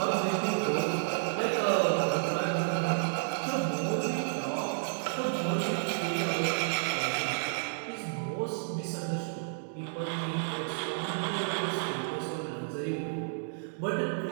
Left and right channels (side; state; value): left; silent; digital silence